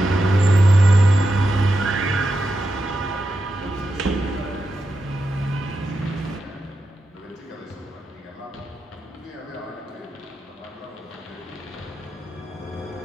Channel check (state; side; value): normal; both; correlation 0.88